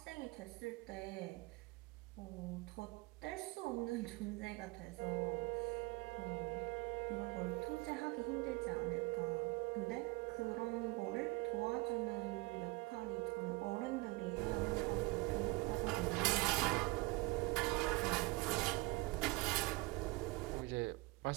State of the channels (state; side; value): quieter; left; 24.1 dB